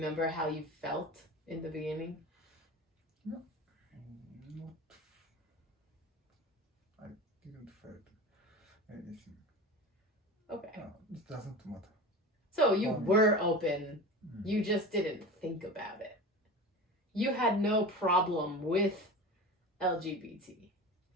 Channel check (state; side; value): normal; both; correlation 0.31